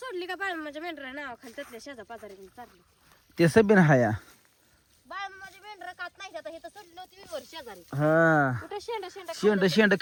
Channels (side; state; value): both; identical; correlation 1.00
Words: का माझ्या मेंढरा नाव खाली त्यातल्या शेजा पाजारी चालली. ते सबिन हाया माझी मेंढरा खात नाही आता हे तर सोडली होती मी वर शेजारी. हा कुठे शेंडा शेंड